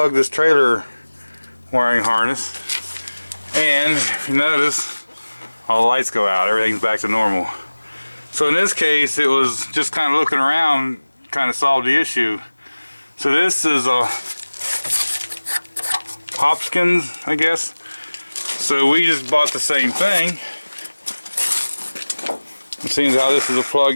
this trailer wiring harness, and if you notice, all the lights go out, everything's back to normal. So in this case, it was just kind of looking around, kind of solved the issue. So this is a Hopkins, I guess. So we just bought the same thing. It seems how this is a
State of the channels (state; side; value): inverted; both; correlation -1.00